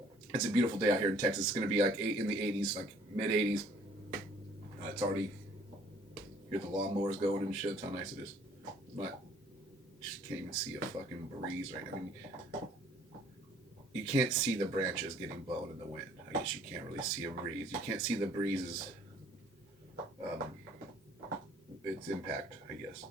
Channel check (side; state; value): both; normal; correlation 0.58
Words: it's a beautiful day out here in Texas. It's going to be like in the 80s, like mid 80s. It's already. Hear the lawnmowers going and shit. That's how nice it is. But just can't even see a fucking breeze right now. I mean, you can't see the branches getting blown in the wind. I guess you can't really see a breeze. You can't see the breezes. Its impact, I guess.